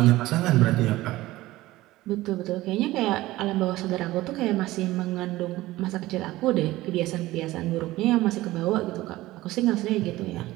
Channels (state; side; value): quieter; left; 17.6 dB